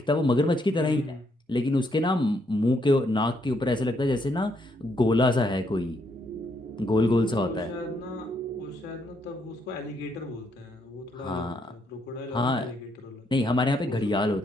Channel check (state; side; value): normal; both; correlation 0.74